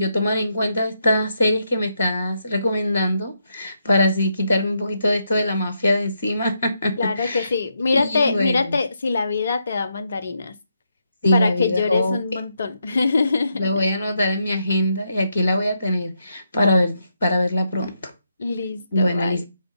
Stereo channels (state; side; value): inverted; both; correlation -0.80